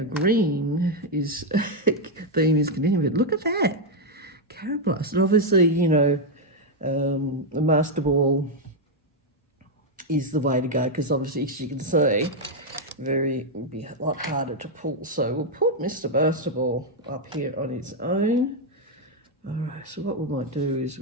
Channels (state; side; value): normal; both; correlation 0.00